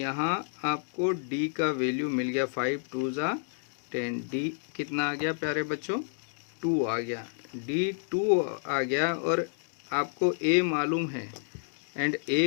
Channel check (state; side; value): silent; right; digital silence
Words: आपको D का वैल्यू मिल गया 5 × 2 = 10। D कितना आ गया प्यारे बच्चों, 2 आ गया। D 2 आ गया और आपको A मालूम है एंड A